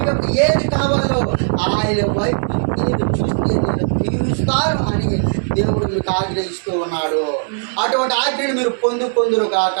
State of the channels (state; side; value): silent; left; digital silence